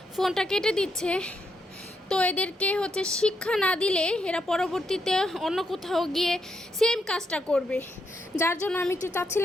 ফোনটা কেটে দিচ্ছে। তো এদেরকে হচ্ছে শিক্ষা না দিলে এরা পরবর্তীতে অন্য কোথাও গিয়ে সেম কাজটা করবে। যার জন্য আমি একটু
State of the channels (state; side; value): normal; both; correlation 0.80